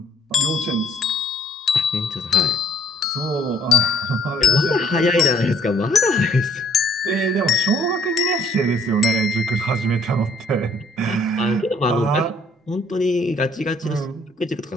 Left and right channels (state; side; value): normal; both; correlation 0.61